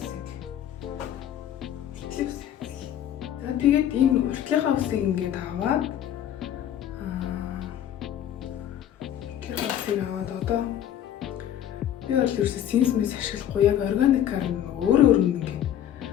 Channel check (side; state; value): right; quieter; 10.8 dB